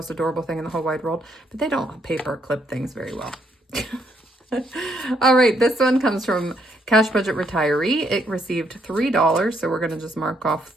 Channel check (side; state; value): both; normal; correlation 0.73